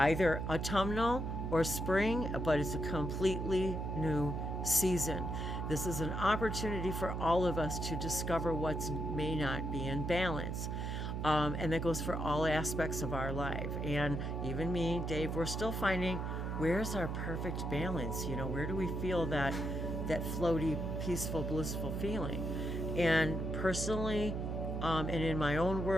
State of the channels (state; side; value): noise; right; hum, 2 dB below the sound